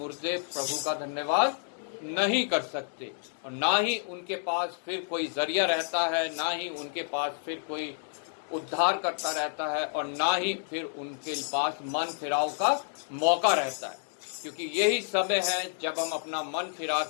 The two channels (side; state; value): right; silent; digital silence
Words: प्रभु का धन्यवाद नहीं कर सकते, और ना ही उनके पास फिर कोई जरिया रहता है, ना ही उनके पास फिर कोई उद्धार करता रहता है, और ना ही फिर उनके पास मन फिराव का मौका रहता है। क्योंकि यही समय है जब हम अपना मन फिरा